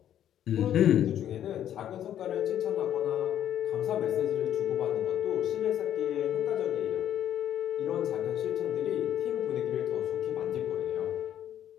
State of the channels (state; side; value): quieter; right; 10.7 dB